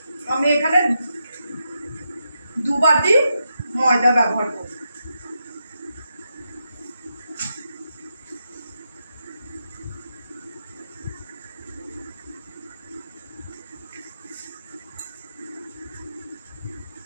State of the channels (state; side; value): inverted; both; correlation -0.85